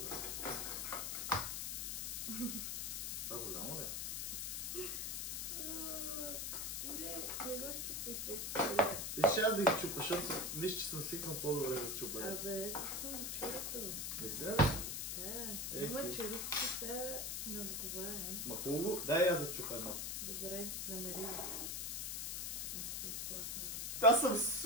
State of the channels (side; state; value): left; noise; hiss, 2 dB below the sound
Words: Това голямо ли? Не го щупай фекция. Виж, аз да ги чупа, защото виж, че съм свикнал по-добре да се чупа. Абе, съм вчерато. Мисля ли? Да, има черупки, сега не отговарям. Ма хубаво, дай аз да чупа едно. Добре, намери го. Вече ще изплатна. Аз съм